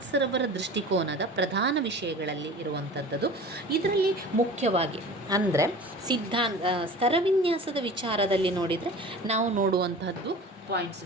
ದೃಷ್ಟಿಕೋನದ ಪ್ರಧಾನ ವಿಷಯಗಳಲ್ಲಿ ಇರುವಂಥದ್ದು. ಇದರಲ್ಲಿ ಮುಖ್ಯವಾಗಿ ಅಂದರೆ ಸ್ತರವಿನ್ಯಾಸದ ವಿಚಾರದಲ್ಲಿ ನೋಡಿದರೆ ನಾವು ನೋಡುವಂಥದ್ದು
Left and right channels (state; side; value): normal; both; correlation 0.39